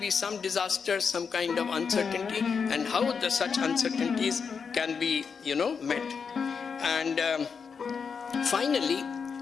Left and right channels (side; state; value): right; quieter; 5.9 dB